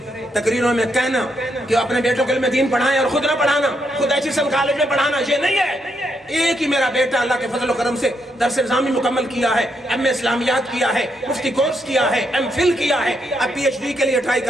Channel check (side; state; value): both; normal; correlation 0.78